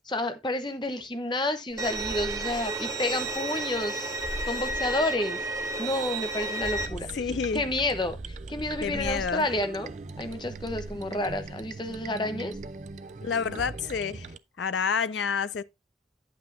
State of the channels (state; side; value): normal; both; correlation 0.37